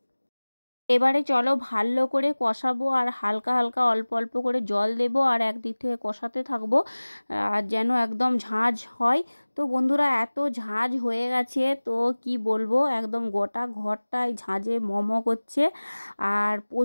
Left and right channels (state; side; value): inverted; both; correlation -1.00